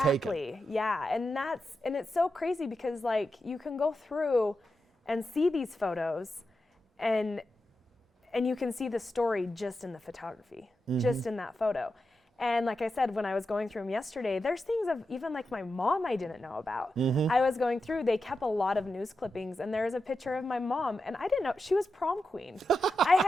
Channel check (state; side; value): normal; both; correlation 0.89